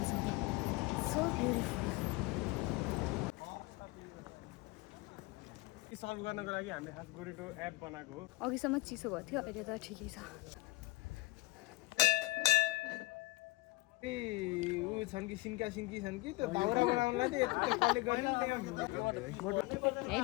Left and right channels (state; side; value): quieter; right; 23.1 dB